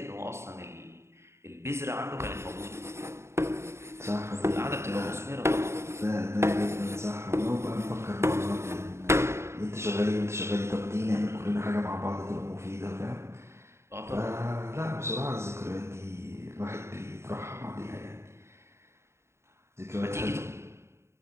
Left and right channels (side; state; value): left; late; 0.13 ms